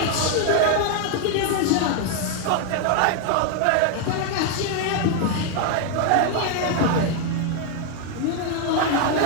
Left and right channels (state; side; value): different; both; correlation 0.01